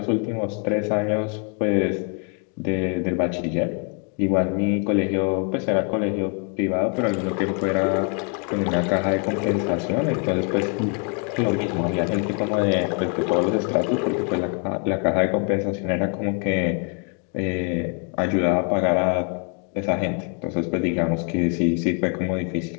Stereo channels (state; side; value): quieter; right; 39.7 dB